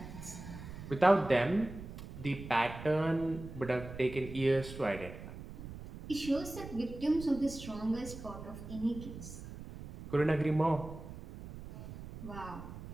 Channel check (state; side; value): noise; right; rumble, 12 dB below the sound